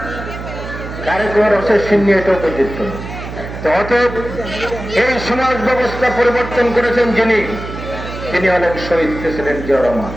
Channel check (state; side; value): noise; right; hum, 9 dB below the sound